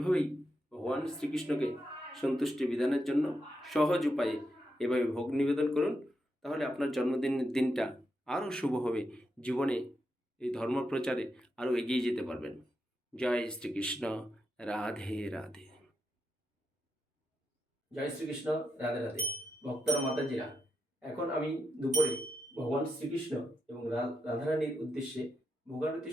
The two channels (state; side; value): normal; both; correlation 0.84